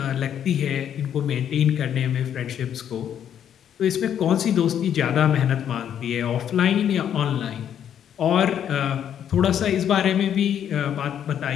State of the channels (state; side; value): quieter; right; 9.4 dB